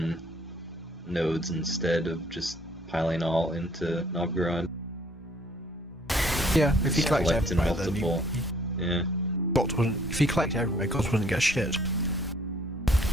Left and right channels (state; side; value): normal; both; correlation 0.61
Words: nodes instead of just piling all into Novgorod. Yeah, if he Just collects collect in everywhere, then multiple. Yeah. Guts wouldn't. If he collects everywhere, Guts wouldn't get shit.